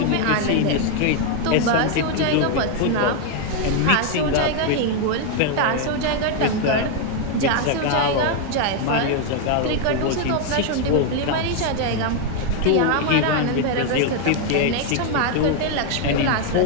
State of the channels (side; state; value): both; different; correlation 0.01